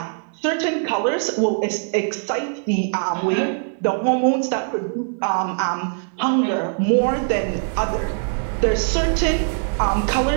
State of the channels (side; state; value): left; silent; 61 dB below the other